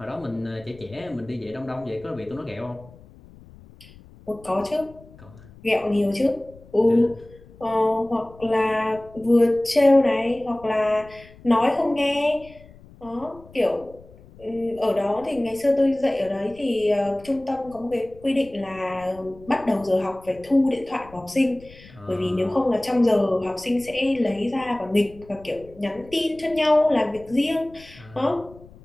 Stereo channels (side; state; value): left; noise; rumble, 22 dB below the sound